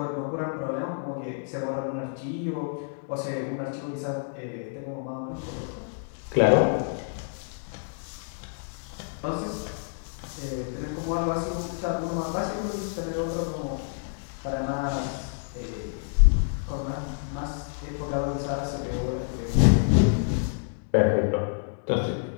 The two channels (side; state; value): right; silent; digital silence